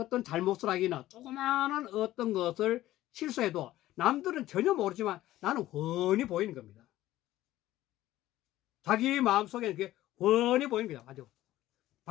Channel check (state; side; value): quieter; right; 15.0 dB